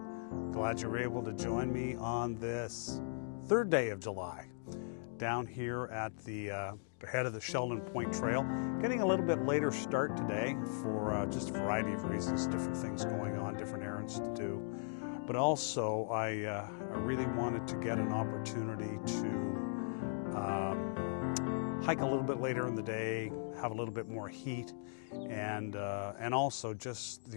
Glad you were able to join me on this third day of July down here at the head of the Sheldon Point Trail. Getting a little bit later start today for just a variety of reasons, different things going on, different errands to do. But also I really wanted to get an opportunity to hike a little bit later in the day, have a little bit more heat, and also just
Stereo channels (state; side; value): silent; right; digital silence